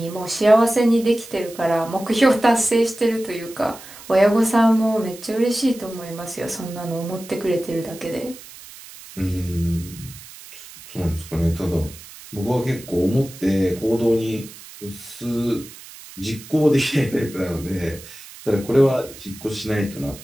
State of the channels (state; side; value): noise; right; hiss, 17 dB below the sound